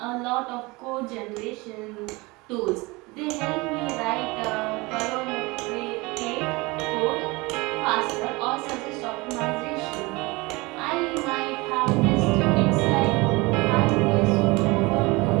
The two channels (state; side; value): quieter; left; 24.2 dB